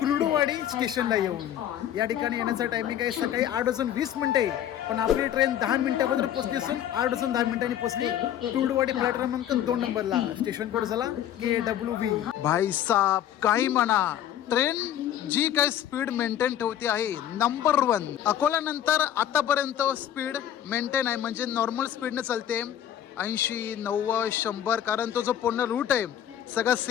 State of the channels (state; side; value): quieter; right; 10.9 dB